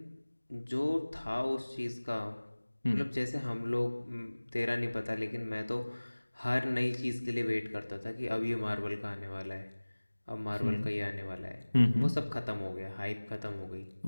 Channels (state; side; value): inverted; both; correlation -1.00